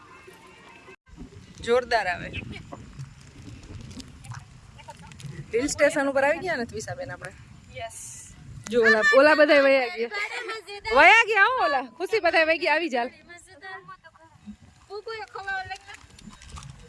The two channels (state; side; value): identical; both; correlation 1.00